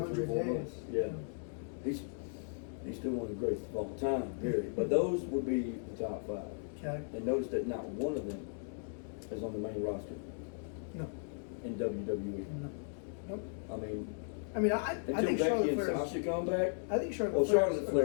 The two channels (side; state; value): right; silent; digital silence